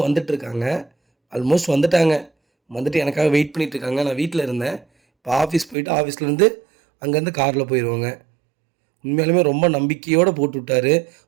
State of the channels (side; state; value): left; drops out; at 5.8 s